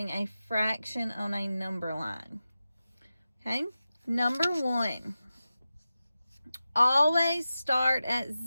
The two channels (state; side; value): inverted; both; correlation -0.93